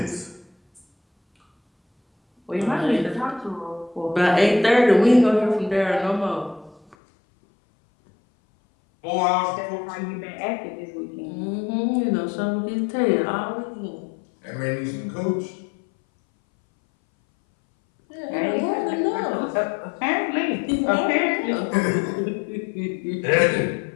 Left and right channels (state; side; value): drops out; right; at 7.0 s